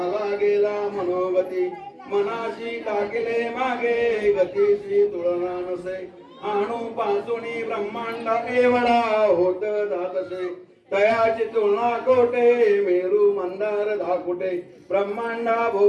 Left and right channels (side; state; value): both; identical; correlation 1.00